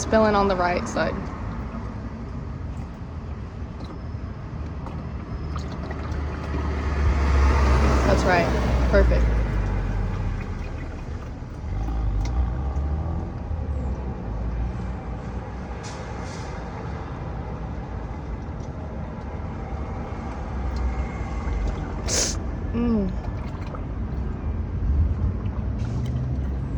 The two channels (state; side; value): identical; both; correlation 1.00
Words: spilling on the right side. That's right. Perfect.